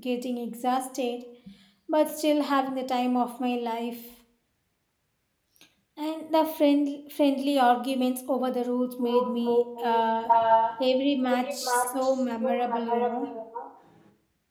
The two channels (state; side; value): identical; both; correlation 1.00